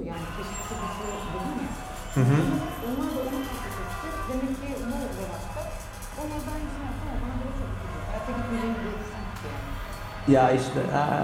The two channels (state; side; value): identical; both; correlation 1.00